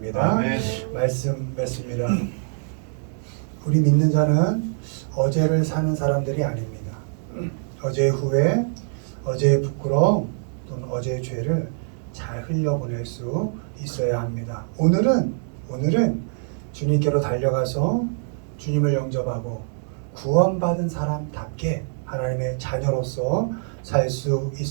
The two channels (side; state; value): left; silent; digital silence